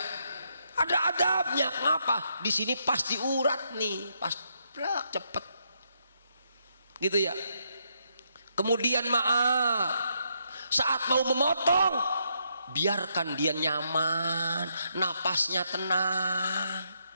Ada adabnya. Ngapa? Di sini pas diurat nih, pas cepet. Gitu ya. Kemudian maaf, saat mau memotong, biarkan dia nyaman, napasnya tenang.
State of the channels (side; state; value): both; inverted; correlation -0.77